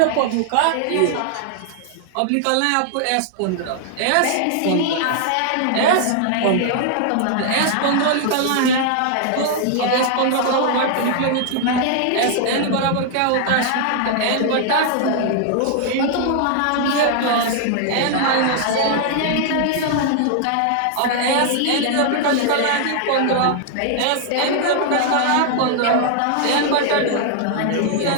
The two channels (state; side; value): different; both; correlation 0.00